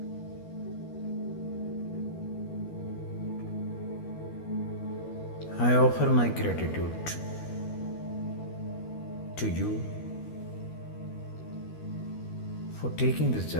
I offer my gratitude to you for taking this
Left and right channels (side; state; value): right; late; 12 ms